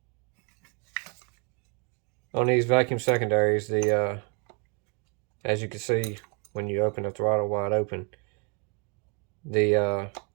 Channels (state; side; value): quieter; left; 36.8 dB